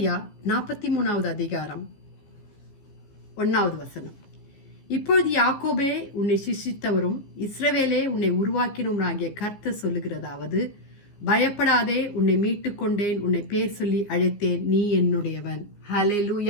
43வது அதிகாரம் 1வது வசனம். இப்பொழுது யாக்கோபே உன்னை சிருஷ்டித்தவரும் இஸ்ரவேலே உன்னை உருவாக்கினவராகிய கர்த்தர் சொல்லுகிறதாவது, பயப்படாதே, உன்னை மீட்டுக் கொண்டேன், உன்னை பேர் சொல்லி அழைத்தேன், நீ என்னுடையவன்.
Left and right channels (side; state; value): right; late; 15 ms